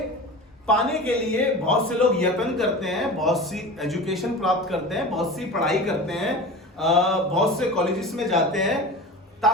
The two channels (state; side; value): normal; both; correlation 0.33